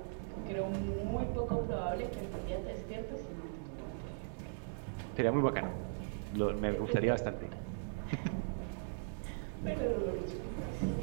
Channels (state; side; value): silent; left; digital silence